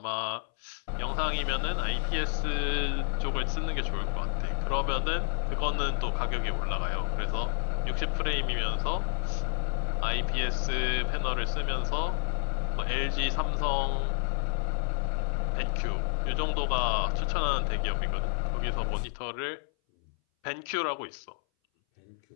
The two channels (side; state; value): right; silent; 58 dB below the other